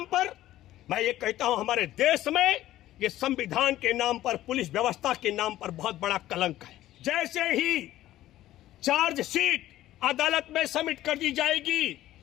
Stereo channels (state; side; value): quieter; right; 14.3 dB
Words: पर, मैं ये कहता हूं, हमारे देश में ये संविधान के नाम पर, पुलिस व्यवस्था के नाम पर बहुत बड़ा कलंक है। जैसे ही चार्जशीट अदालत में सबमिट कर दी जाएगी,